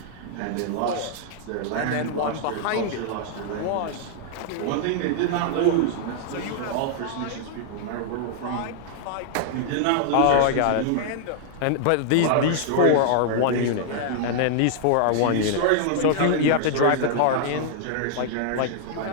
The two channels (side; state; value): both; different; correlation -0.01